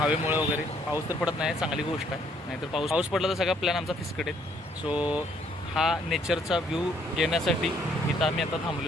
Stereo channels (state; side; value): normal; both; correlation 0.66